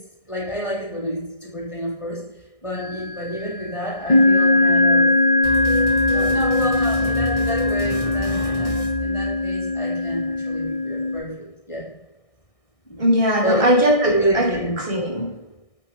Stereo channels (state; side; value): late; right; 1.6 ms